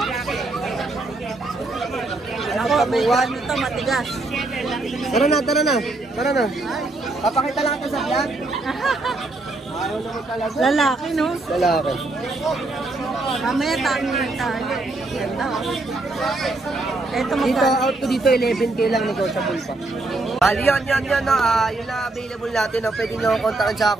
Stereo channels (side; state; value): left; quieter; 3.1 dB